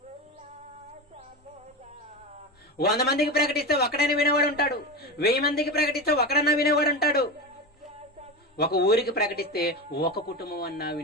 100 మందికి ప్రకటిస్తే ఒక్కడైనా వినేవాడు ఉంటాడు, 1000 మందికి ప్రకటిస్తే ఒకడన్నా వినేవాడు ఉంటాడు, ఒక ఊరికి ప్రకటిస్తే ఒక కుటుంబం అన్నా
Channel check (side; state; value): both; normal; correlation 0.21